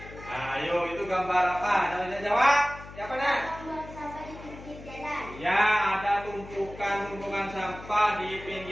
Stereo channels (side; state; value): left; noise; hum, 15 dB below the sound